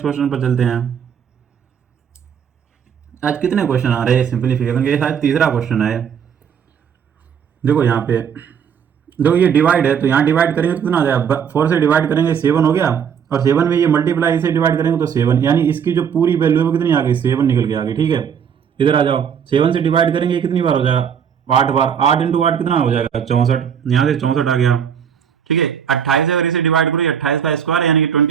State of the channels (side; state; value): left; quieter; 7.8 dB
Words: क्वेश्चन पर चलते हैं। आज कितने क्वेश्चन आ रहे हैं सिंपलीफिकेशन के, शायद तीसरा क्वेश्चन है। देखो यहाँ पे, देखो ये डिवाइड है तो यहाँ डिवाइड करेंगे तो कितना आ जाएगा, 4 से डिवाइड करेंगे 7 हो गया, और 7 में ये मल्टीप्लाई से डिवाइड करेंगे तो 7, यानी इसकी जो पूरी वैल्यू है वो कितनी आ गई 7 निकल के आ गई। ठीक है, इधर आ जाओ, 7 से डिवाइड करेंगे कितनी बार हो जाएगा 8 बार, 8 इंटू 8 कितना हो जाएगा 64, यहाँ से 64 आ गया। ठीक है, 28 अगर इसे डिवाइड करो 28 का स्क्वायर यानी कि